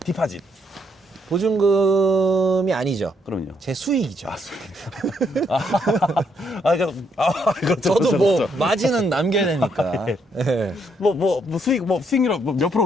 보증금이 아니죠. 그럼요. 제 수익이죠. 그렇죠. 저도 그렇죠, 뭐 그렇죠. 마진은 남겨야 되니까. 예. 뭐 수익률 몇 프로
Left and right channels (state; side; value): normal; both; correlation 0.73